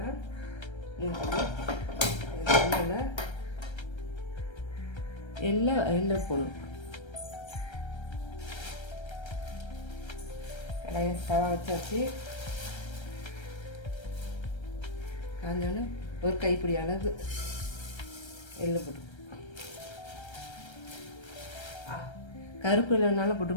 எல்லாம் போடணும். கடையை தவா வச்சாச்சு. காஞ்சோன்னு ஒரு கைப்பிடி அளவு எள்ளு போட்டு, கருப்பு எள்ளுனாலும்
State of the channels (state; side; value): late; right; 1.3 ms